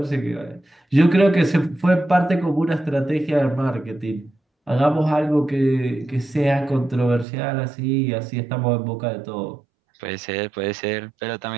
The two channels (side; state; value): left; drops out; at 7.2 s